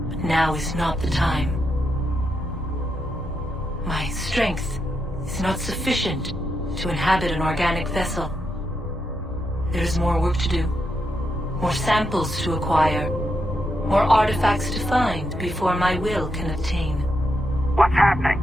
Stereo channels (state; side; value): normal; both; correlation 0.83